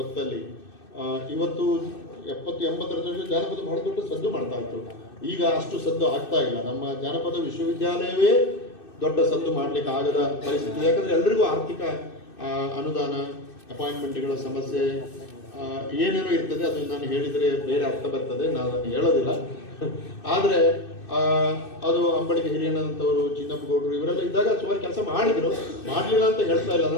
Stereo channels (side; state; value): right; late; 2.6 ms